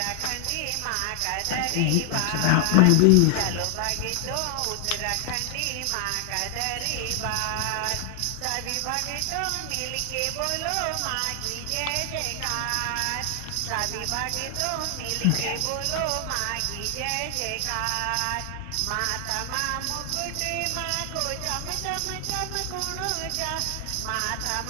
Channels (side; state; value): both; different; correlation 0.00